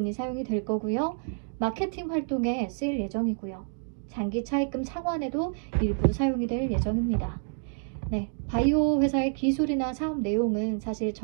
사용이 될 거고요. 마케팅 활동에 쓰일 예정이고요. 장기 차입금 상환에도 일부 사용이 될 예정입니다. 네, 바이오 회사의 기술이나 사업 내용은 사실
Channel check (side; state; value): left; silent; 59 dB below the other